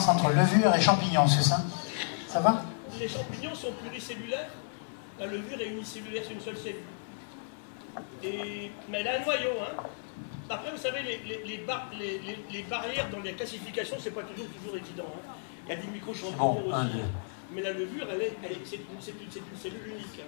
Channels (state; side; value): silent; right; 56 dB below the other